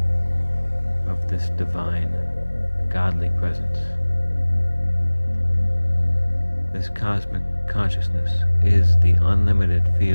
of this divine, godly presence. This cosmic consciousness is the unlimited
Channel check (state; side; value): inverted; both; correlation -1.00